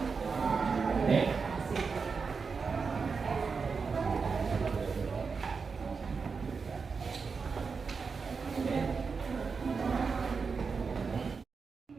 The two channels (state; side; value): quieter; left; 5.1 dB